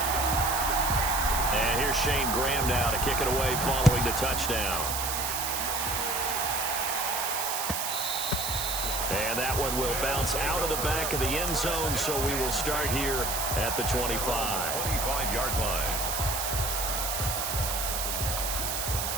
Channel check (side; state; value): right; noise; hiss, 2 dB below the sound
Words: And here's Shane Graham now to kick it away following the touchdown. And that one will bounce out of the back of the end zone, so we will start here at the 25. 25-yard line.